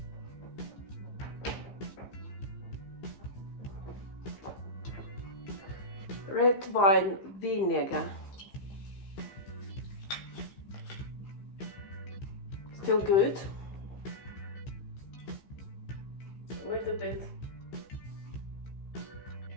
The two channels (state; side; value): late; right; 15 ms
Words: Red wine vinegar. Still good. A little bit.